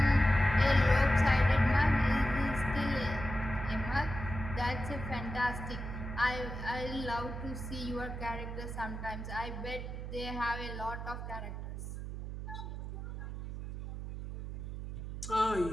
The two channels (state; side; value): noise; right; hum, 7 dB below the sound